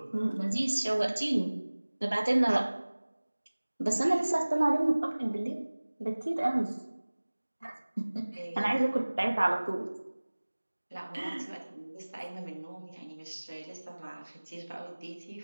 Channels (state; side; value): inverted; both; correlation -1.00